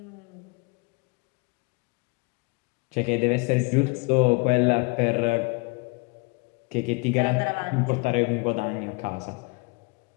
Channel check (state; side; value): quieter; right; 28.6 dB